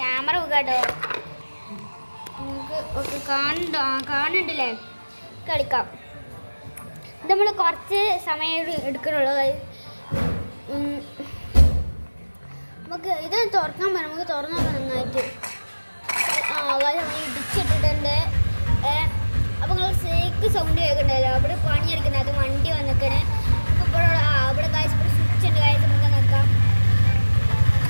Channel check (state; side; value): inverted; both; correlation -1.00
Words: കേട്ടോ, നമുക്ക് ഒക്കെ കാണുന്നുണ്ടല്ലേ, കളിക്കാം. ഇത് നമ്മൾ കുറച്ച് സമയം എടുക്കണുള്ളൂ. നമുക്ക് ഇത് തുറക്കാൻ പറ്റും, നമുക്ക് തുറന്നു നോക്കാം നന്നായിട്ട്. ഇടിച്ചിട്ടിട്ടുണ്ട്. അപ്പോൾ നിങ്ങൾ സേക്ക് സൗണ്ട് കേൾക്കണ്ടല്ലോ, അവിടെ പണിയെടുക്കുന്നത്. അത് വണ്ടി വന്നിക്കണേ. ഇപ്പോൾ ഇവിടെ കാഴ്ച സ്വിച്ച് ഉണ്ട്. കാഴ്ച നമുക്ക് നോക്കാം.